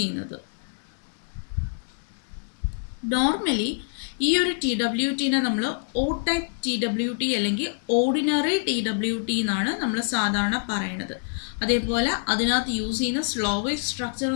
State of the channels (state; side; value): silent; right; 61 dB below the other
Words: നോർമലി ഈ ഒരു TWTനെ നമ്മൾ O ടൈപ്പ് TWT അല്ലെങ്കിൽ ഓർഡിനറി TWT എന്നാണ് നമ്മൾ സാധാരണ പറയുന്നത്. അതേപോലെ അതിനകത്ത് യൂസ് ചെയ്യുന്ന സ്ലോ വേവ് സ്ട്രക്ചർ